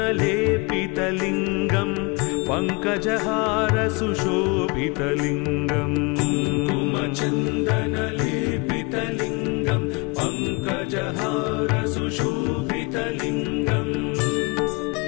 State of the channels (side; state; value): right; quieter; 28.5 dB